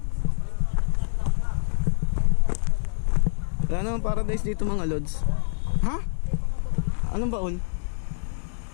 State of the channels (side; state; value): right; silent; digital silence